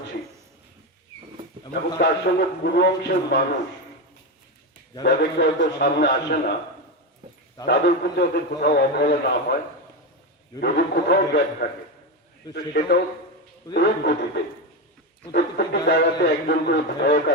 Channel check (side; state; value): both; normal; correlation 0.14